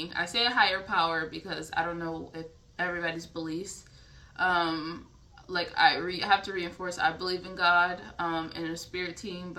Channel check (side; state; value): both; identical; correlation 1.00